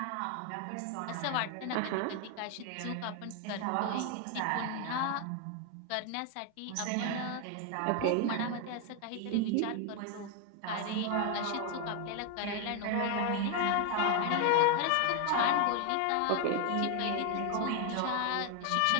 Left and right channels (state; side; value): different; both; correlation 0.01